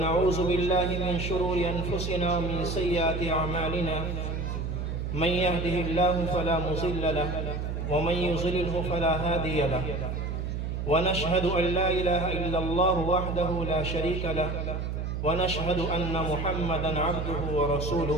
بالله من شرور أنفسنا ومن سيئات أعمالنا من يهده الله فلا مضل له ومن يضلله فلا هادي له ونشهد أن لا إله إلا الله وحده لا شريك له ونشهد أن محمدا عبده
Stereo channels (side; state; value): right; noise; hum, 3 dB below the sound